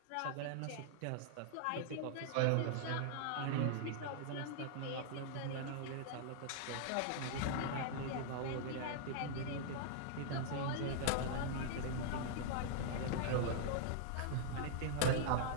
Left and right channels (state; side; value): different; both; correlation -0.01